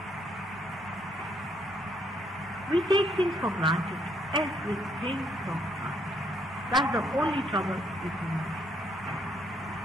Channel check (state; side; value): normal; both; correlation 0.71